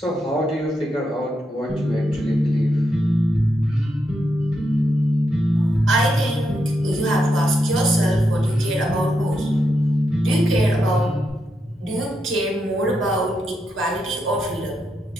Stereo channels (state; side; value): normal; both; correlation 0.83